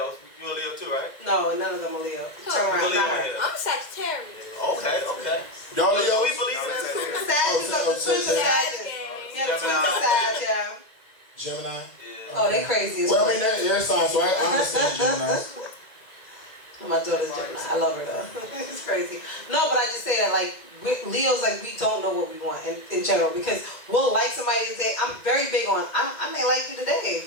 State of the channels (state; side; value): late; right; 2.0 ms